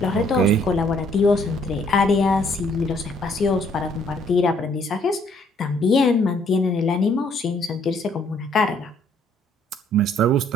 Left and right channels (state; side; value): normal; both; correlation 0.65